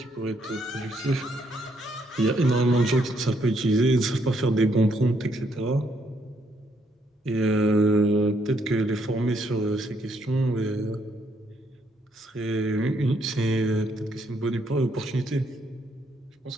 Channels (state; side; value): normal; both; correlation 0.72